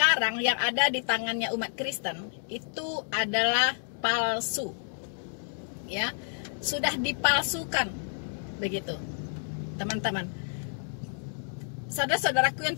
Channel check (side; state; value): right; silent; digital silence